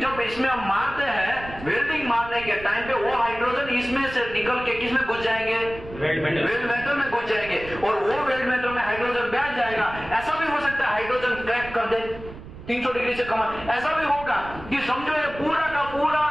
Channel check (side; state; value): right; noise; rumble, 15 dB below the sound